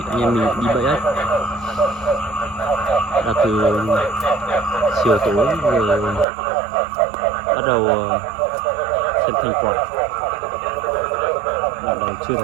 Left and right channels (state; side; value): drops out; left; at 6.2 s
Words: anh em mình đi bẫy ếch. Đã từ chiều tối rồi bắt đầu xem thành quả. Đoạn đầu chưa